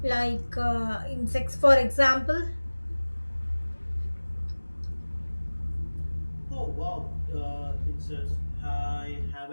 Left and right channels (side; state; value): both; inverted; correlation -1.00